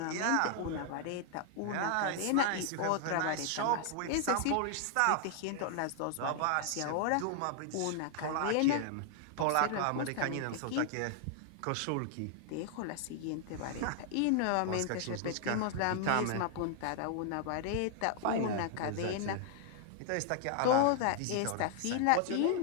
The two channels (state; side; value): different; both; correlation 0.00